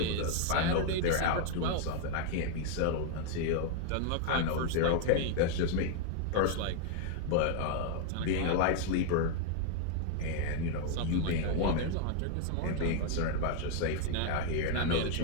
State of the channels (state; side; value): different; both; correlation 0.00